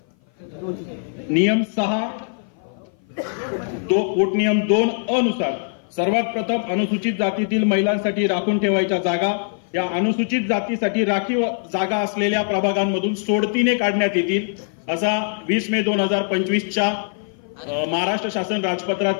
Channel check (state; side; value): silent; right; 56 dB below the other